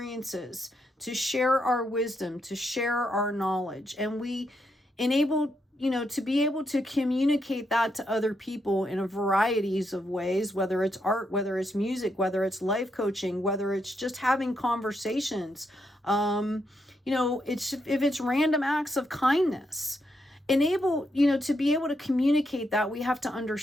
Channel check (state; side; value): normal; both; correlation 0.80